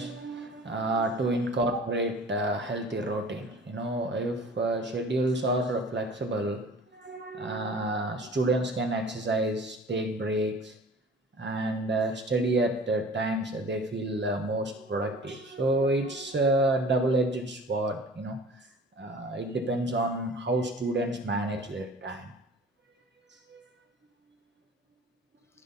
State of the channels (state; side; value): normal; both; correlation 0.44